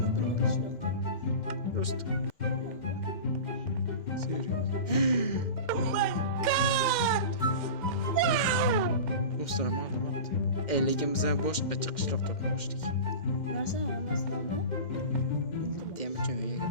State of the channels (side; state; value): right; late; 2.1 ms